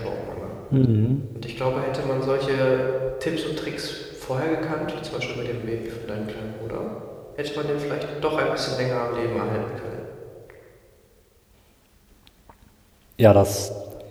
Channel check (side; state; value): both; identical; correlation 1.00